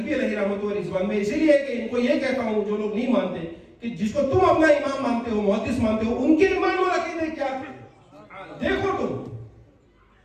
علیہ رحمۃ و رضوان میں اسی لیے کہ ان کو یہ کہتا ہوں جو لوگ نہیں مانتے کہ جس کو تم اپنا امام مانتے ہو، محدث مانتے ہو، ان کے ایمان اور عقیدے کیا تھے دیکھو تم،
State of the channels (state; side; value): identical; both; correlation 1.00